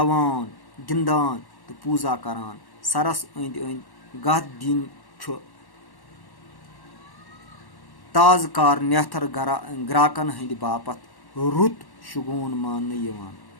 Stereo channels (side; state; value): right; late; 1.1 ms